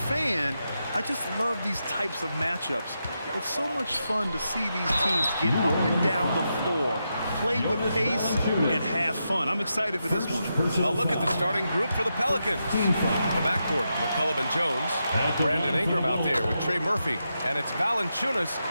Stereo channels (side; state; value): both; inverted; correlation -0.86